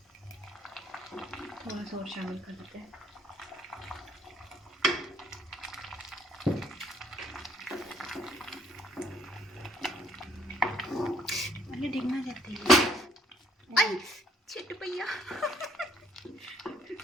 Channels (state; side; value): normal; both; correlation 0.65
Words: चम्मच और शामिल कर देते हैं। अरे डिगना जाती है। आई छिट भैया।